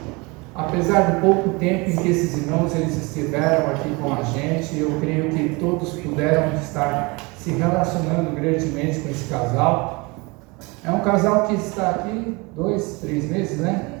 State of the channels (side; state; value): left; quieter; 26.6 dB